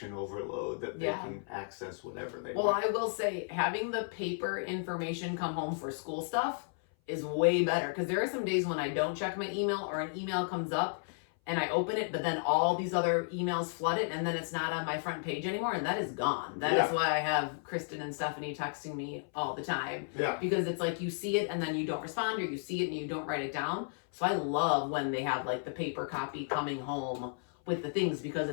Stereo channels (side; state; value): right; silent; 55 dB below the other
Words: overload that they can access whatever they want. Well, I will say having the paper information come home for school stuff is way better, because there are some days when I don't check my email, or an email comes up and I open it, but then all these other emails flood it, and then it's not on my front page anymore, and that is gone. That is why I have Kristen and Stephanie texting me all the time. Yeah. Because it's like you see it and then you don't respond, or you see it and you don't write it down. So I love when they have like the paper copy coming home with the things, because